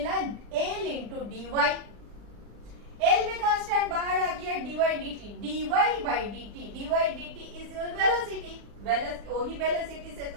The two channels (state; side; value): late; left; 40 ms